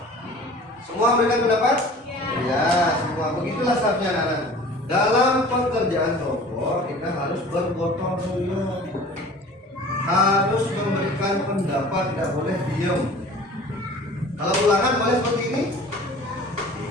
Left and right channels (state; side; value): normal; both; correlation 0.44